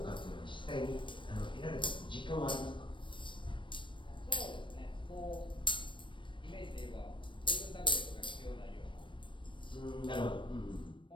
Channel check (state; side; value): late; right; 0.24 ms